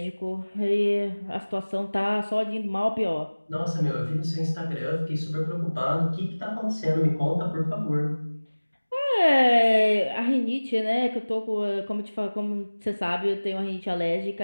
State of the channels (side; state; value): both; inverted; correlation -1.00